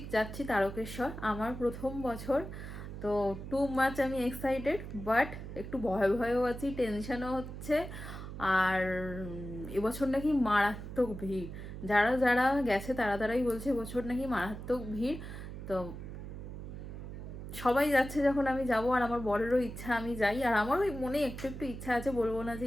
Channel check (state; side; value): noise; right; hum, 9 dB below the sound